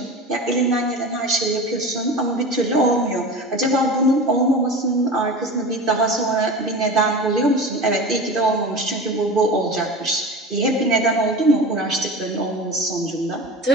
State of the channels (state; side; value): normal; both; correlation 0.32